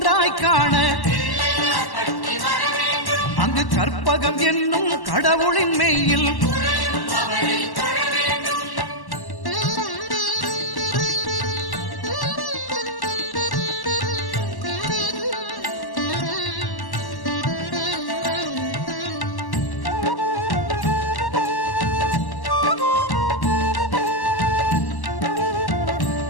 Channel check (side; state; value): right; late; 1.1 ms